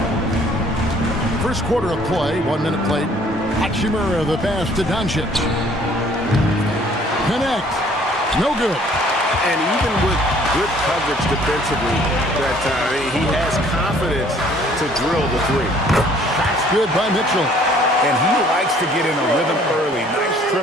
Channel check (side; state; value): both; normal; correlation 0.58